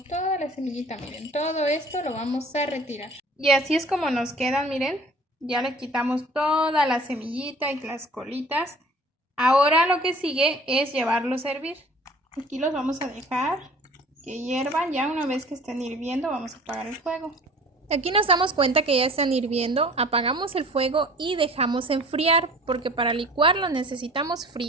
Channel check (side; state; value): both; normal; correlation 0.48